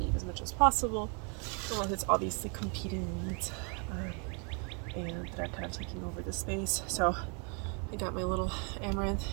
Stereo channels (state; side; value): quieter; left; 36.9 dB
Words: as much as possible, unless it's obviously competing weeds and that are kind of taking over the space. So I got my little amaranth